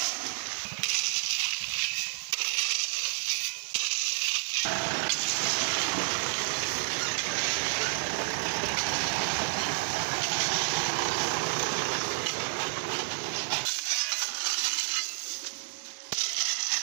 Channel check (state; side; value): silent; left; 58 dB below the other